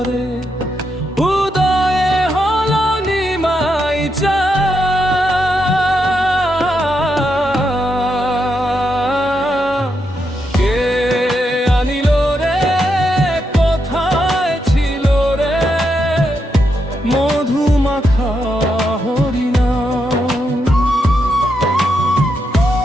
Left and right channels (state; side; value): normal; both; correlation 0.82